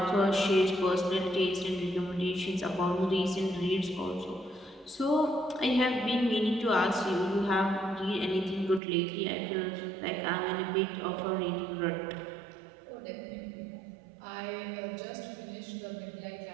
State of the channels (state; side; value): drops out; left; at 8.8 s